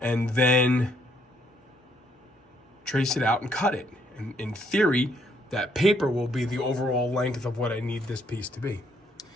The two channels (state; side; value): normal; both; correlation 0.70